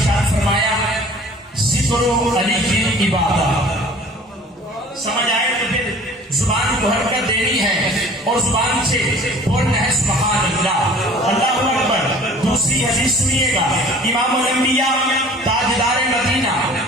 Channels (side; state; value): both; normal; correlation 0.48